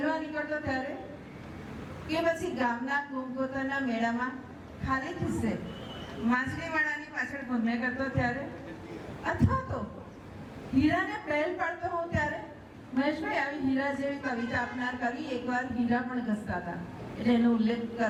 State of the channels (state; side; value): identical; both; correlation 1.00